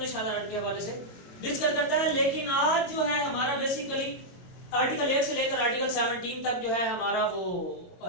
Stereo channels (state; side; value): late; right; 22 ms